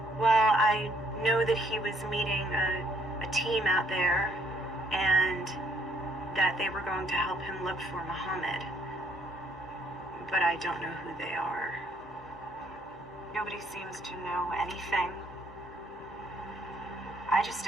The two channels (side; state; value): right; noise; hum, 28 dB below the sound